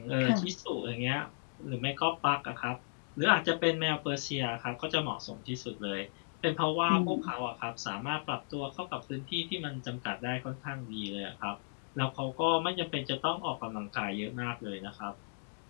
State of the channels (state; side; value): silent; right; digital silence